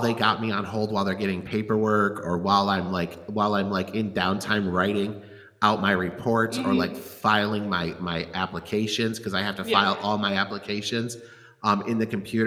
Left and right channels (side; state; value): both; identical; correlation 1.00